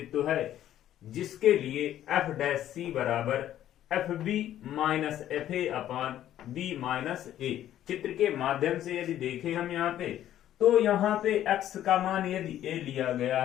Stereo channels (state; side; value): quieter; right; 12.0 dB